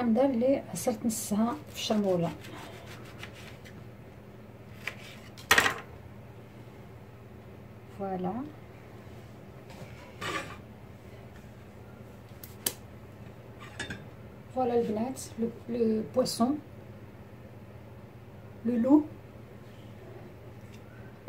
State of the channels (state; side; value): identical; both; correlation 1.00